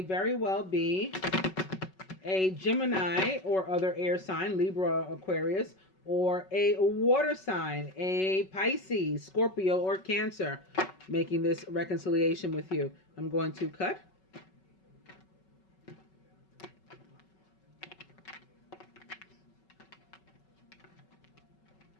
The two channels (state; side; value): late; right; 5.3 ms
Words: very well be a Gemini or other air sign, Libra, Aquarius, or a water sign, a Pisces, Scorpio, or Cancer, making this reconciliation with you. I'm going to cut.